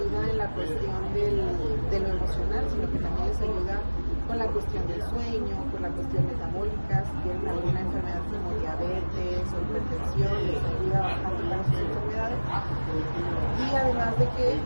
en la cuestión de lo emocional, sino que también les ayuda con la cuestión del sueño, con la cuestión metabólica, si tienen alguna enfermedad como diabetes o hipertensión, les ayuda bastante para sus enfermedades y además de que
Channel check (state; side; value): inverted; both; correlation -1.00